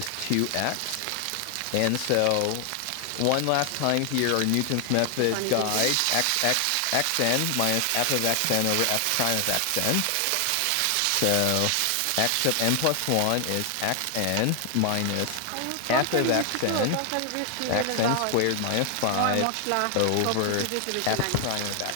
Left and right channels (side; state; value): both; different; correlation 0.00